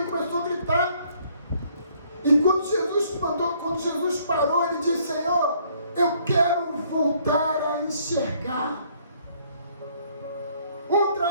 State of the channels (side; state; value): both; inverted; correlation -0.64